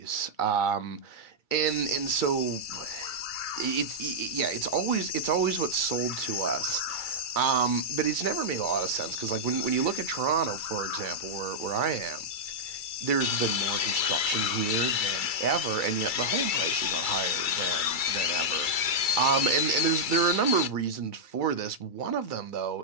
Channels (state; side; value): late; right; 2.3 ms